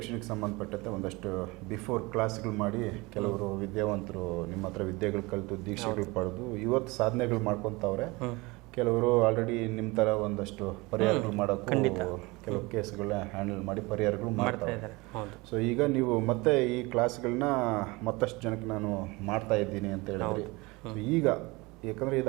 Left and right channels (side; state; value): left; quieter; 24.0 dB